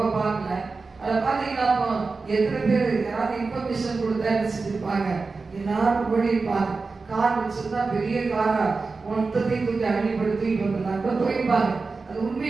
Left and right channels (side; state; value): left; quieter; 4.1 dB